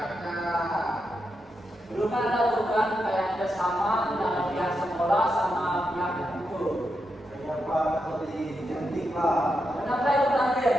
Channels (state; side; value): normal; both; correlation 0.85